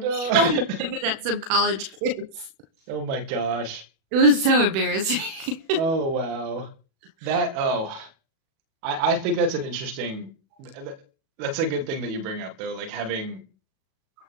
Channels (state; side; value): late; left; 36 ms